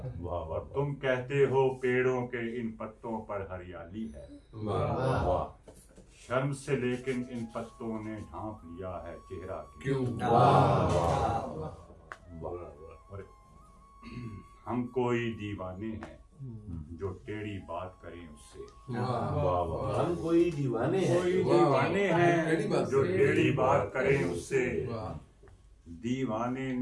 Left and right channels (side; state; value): both; identical; correlation 1.00